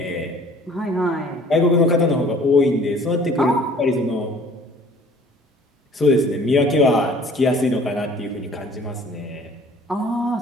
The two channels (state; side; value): normal; both; correlation 0.52